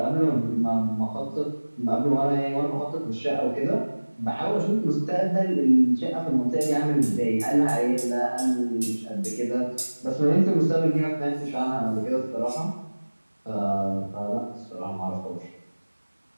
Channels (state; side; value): inverted; both; correlation -1.00